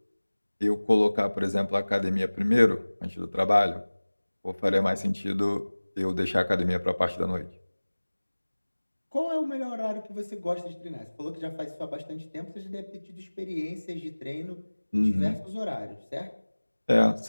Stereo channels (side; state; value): both; inverted; correlation -1.00